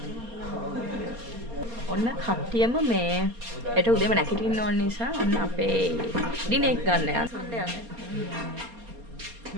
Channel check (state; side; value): late; left; 4.3 ms